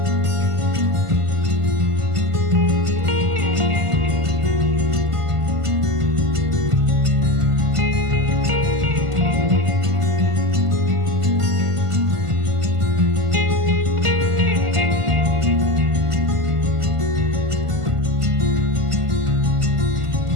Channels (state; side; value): late; left; 1.5 ms